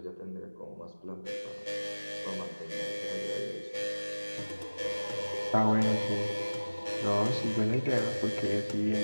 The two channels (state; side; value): inverted; both; correlation -1.00